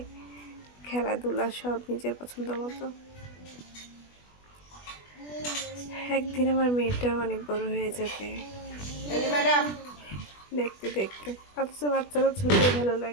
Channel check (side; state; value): right; late; 20 ms